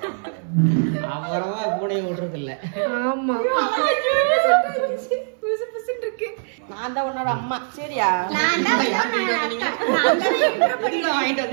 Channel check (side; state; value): left; silent; 60 dB below the other